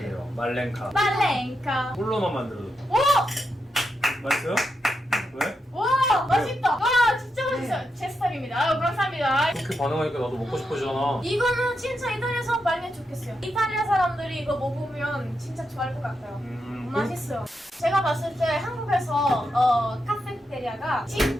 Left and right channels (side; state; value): both; normal; correlation 0.85